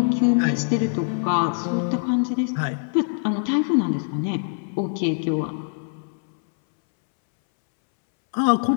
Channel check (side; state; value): right; silent; 63 dB below the other